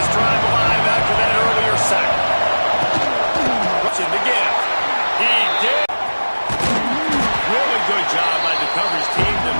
drive alive after that earlier sack. Rushing to get it. He did. Really good job by the coverage team to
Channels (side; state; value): both; inverted; correlation -1.00